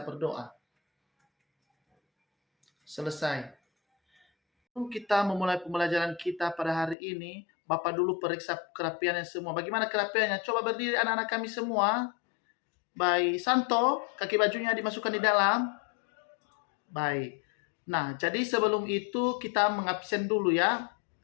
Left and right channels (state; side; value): drops out; right; at 7.0 s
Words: berdoa. Selesai. Sebelum kita memulai pembelajaran kita pada hari ini, Bapak dulu periksa kerapiannya semua. Bagaimana kerapiannya? Coba berdiri anak-anak kami semua. Baik, Santo, kaki bajunya dimasukkan di dalam. Baik. Nah, jadi sebelum itu kita mengabsen dulu ya.